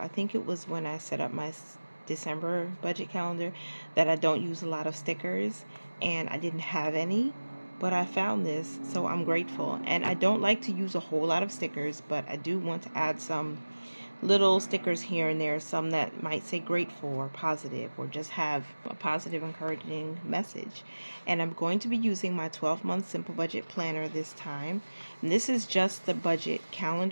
think it was when I set up my December budget calendar, that I don't use a lot of stickers, and I didn't have any. But I found this, so I'm grateful. And I don't like to use a whole lot of stickers, but I do want to add some little stickers here and there, some that might say grateful or positive or just have a positive, encouraging message. And I'm going to be using my 12-month simple budget planner this time. And this is just the budget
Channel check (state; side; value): inverted; both; correlation -1.00